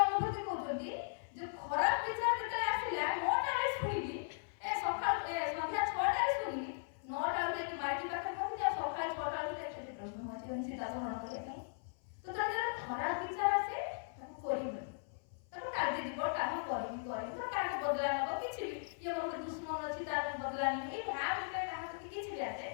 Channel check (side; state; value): right; silent; 52 dB below the other